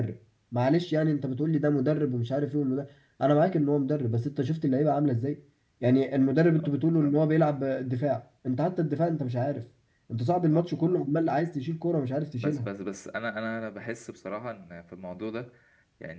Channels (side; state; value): both; identical; correlation 1.00